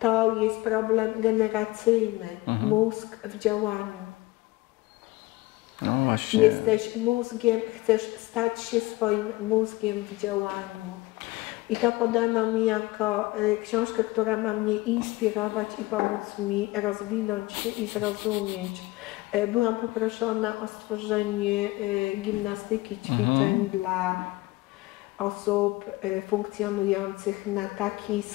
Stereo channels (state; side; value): quieter; right; 20.9 dB